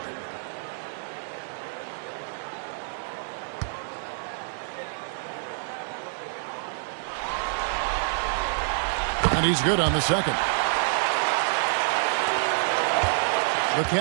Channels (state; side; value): silent; left; digital silence